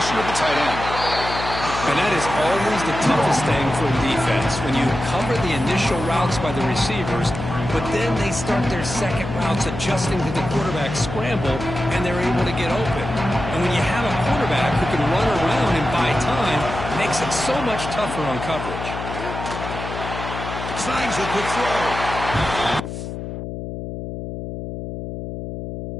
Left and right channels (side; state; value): left; noise; hum, 7 dB below the sound